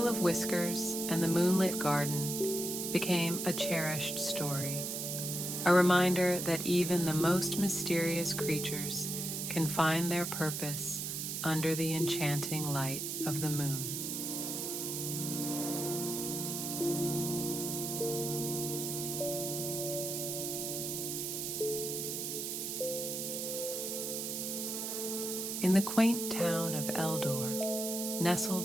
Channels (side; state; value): right; noise; hiss, 3 dB below the sound